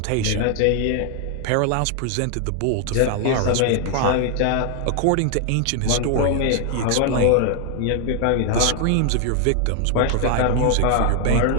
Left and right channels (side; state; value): both; different; correlation 0.00